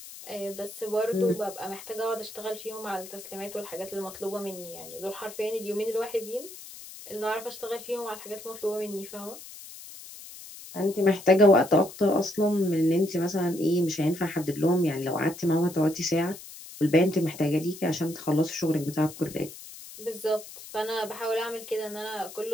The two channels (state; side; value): noise; left; hiss, 15 dB below the sound